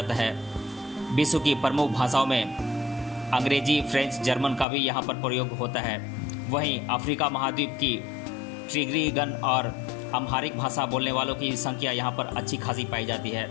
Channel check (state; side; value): drops out; right; at 4.7 s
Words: है। विश्व की प्रमुख भाषाओं में अंग्रेजी, फ्रेंच, जर्मन का भी यहाँ पर प्रयोग होता है। वहीं अफ्रीका महाद्वीप की ट्रिग्रिगन और अम्हारिक भाषा बोलने वालों की संख्या यहाँ पर अच्छी खासी पाई जाती है।